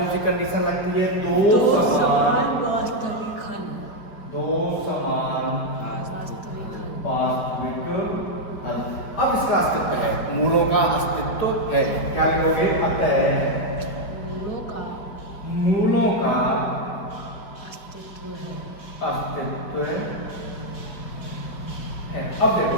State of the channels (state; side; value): late; right; 4.9 ms